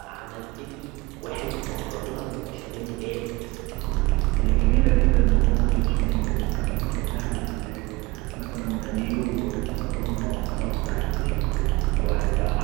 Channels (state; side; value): quieter; left; 23.2 dB